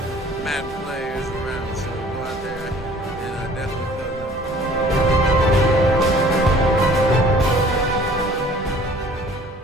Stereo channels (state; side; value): normal; both; correlation 0.52